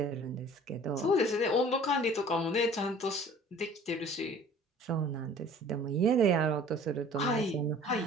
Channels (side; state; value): both; normal; correlation 0.49